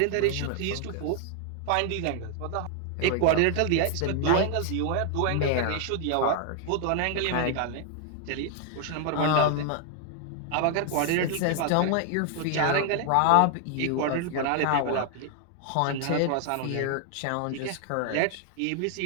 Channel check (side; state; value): both; different; correlation 0.00